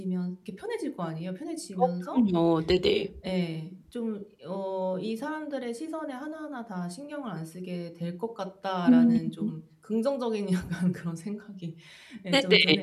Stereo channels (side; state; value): both; identical; correlation 1.00